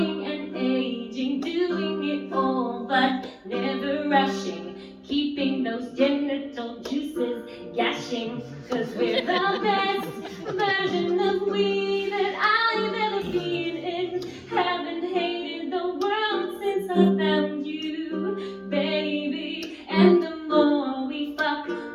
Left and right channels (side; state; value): both; identical; correlation 1.00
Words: and aging, doing it all but never rushing, keeping those genital juices gashing, 'cause we're the best version of we that I've ever been in. Haven't hated the world since I found you, baby. And the more we fuck,